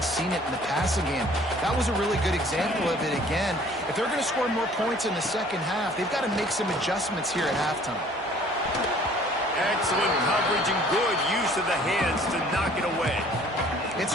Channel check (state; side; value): normal; both; correlation 0.54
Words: seen it in the passing game. That was a really good example of it again. If they're going to score more points in the second half, they've got to make some adjustments here at halftime. Excellent coverage and good use of the hands to knock it away. It's